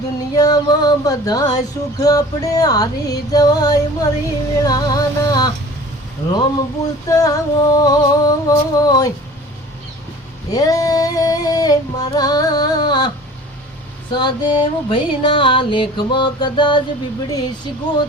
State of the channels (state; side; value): normal; both; correlation 0.44